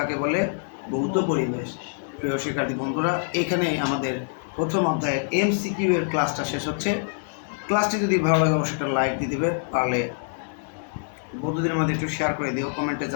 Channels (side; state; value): right; silent; digital silence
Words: বলে ভৌত পরিবেশ। প্রিয় শিক্ষার্থী বন্ধুরা, এখানে আমাদের প্রথম অধ্যায়ের এমসিকিউ এর ক্লাসটা শেষ হচ্ছে। ক্লাসটি যদি ভালো লাগে অবশ্যই একটা লাইক দিয়ে দিবে, পারলে বন্ধুদের মধ্যে একটু শেয়ার করে দিও, কমেন্টে